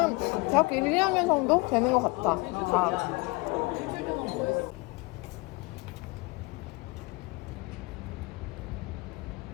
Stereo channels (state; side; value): quieter; right; 24.9 dB